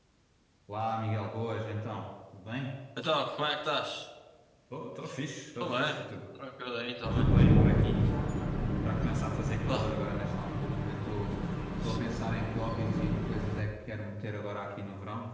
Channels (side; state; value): both; identical; correlation 1.00